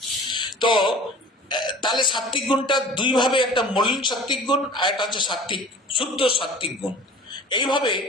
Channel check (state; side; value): normal; both; correlation 0.44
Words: তো তাহলে সাত্বিক গুণটা দুই ভাবে, একটা মলিন সাত্বিক গুণ আর একটা হচ্ছে সাত্বিক, শুদ্ধ সাত্বিক গুণ। এইভাবে